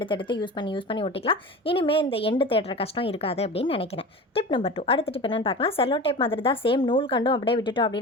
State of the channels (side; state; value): both; normal; correlation 0.32